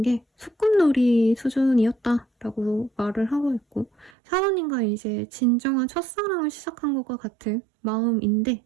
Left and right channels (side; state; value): left; drops out; at 4.1 s